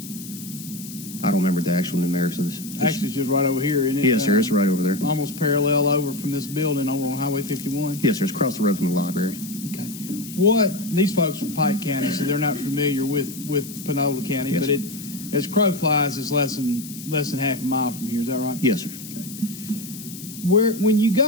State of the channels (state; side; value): noise; left; hiss, 13 dB below the sound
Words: I don't remember the actual numerics of this. Actually, it's just right over here, isn't it? Yes, sir, it's right over there. Almost parallel over from this building over on Highway 51? Yes, sir, it's across the road from the library. Okay. These folks from Pike County, so they're not familiar with Panola County, yes, but it, as crow flies, is less than half a mile from here. Is that right? Yes, sir. Okay. When you